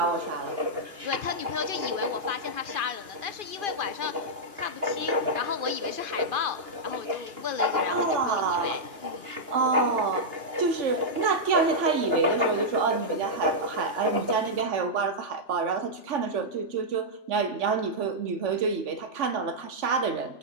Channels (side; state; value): left; late; 2.9 ms